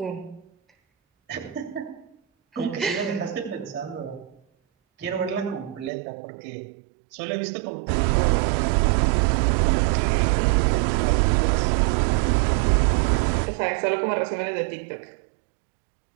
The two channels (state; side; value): drops out; left; at 5.9 s